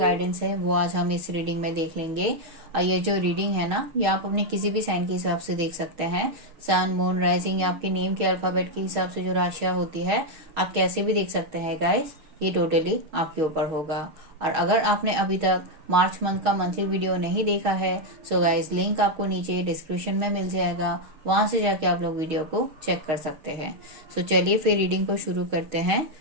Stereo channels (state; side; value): late; left; 6.4 ms